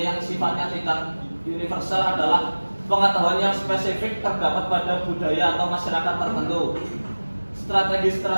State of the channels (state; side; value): inverted; both; correlation -1.00